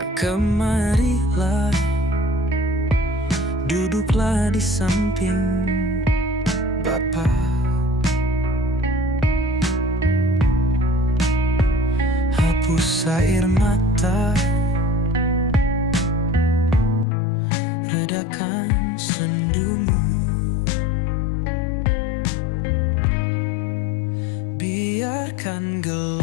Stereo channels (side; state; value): right; drops out; at 17.1 s